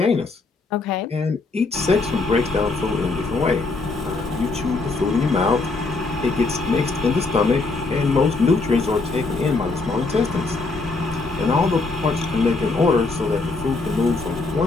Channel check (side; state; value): right; quieter; 3.7 dB